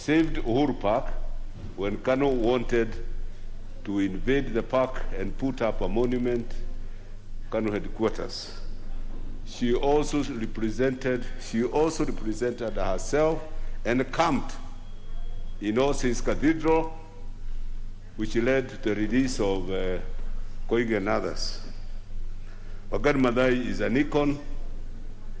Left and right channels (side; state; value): both; identical; correlation 1.00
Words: Uhuru Park when Kanu wanted to invade the park and put up a monument, Kanu headquarters. She also represented herself and camped in All Saints Cathedral, which led to the release of Koigi and others. Wangari Maathai is an icon